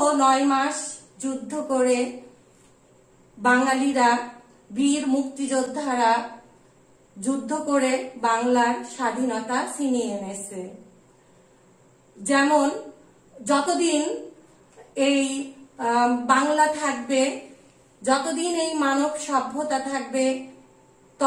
9 মাস যুদ্ধ করে বাঙালিরা, বীর মুক্তিযোদ্ধারা যুদ্ধ করে বাংলার স্বাধীনতা ছিনিয়ে এনেছে। যেমন যতদিন এই বাংলা থাকবে, যতদিন এই মানব সভ্যতা থাকবে,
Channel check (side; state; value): both; identical; correlation 1.00